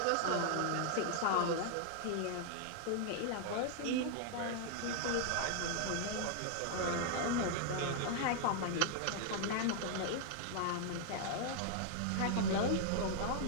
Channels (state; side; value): different; both; correlation 0.00